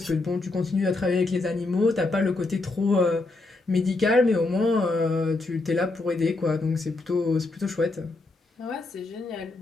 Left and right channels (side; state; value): right; quieter; 3.2 dB